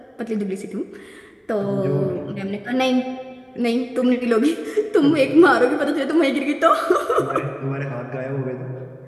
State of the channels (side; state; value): both; identical; correlation 1.00